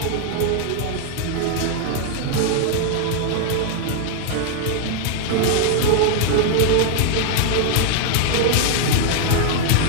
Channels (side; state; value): both; different; correlation 0.00